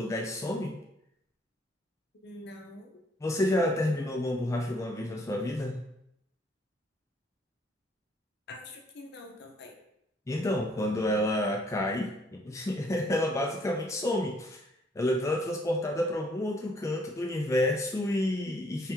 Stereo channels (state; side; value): normal; both; correlation 0.65